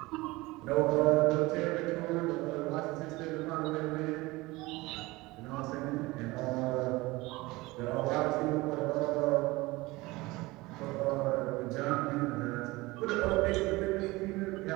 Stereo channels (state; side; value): quieter; left; 21.3 dB